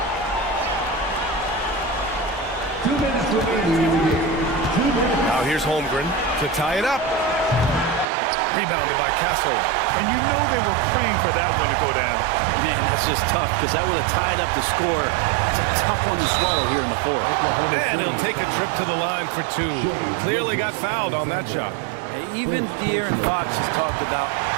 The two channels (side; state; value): left; drops out; at 8.1 s